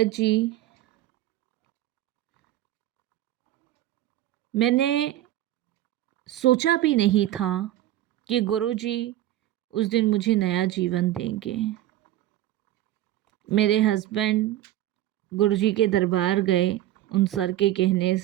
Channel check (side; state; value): left; quieter; 13.9 dB